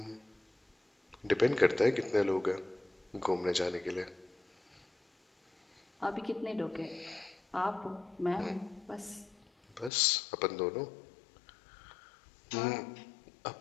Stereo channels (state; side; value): drops out; right; at 9.9 s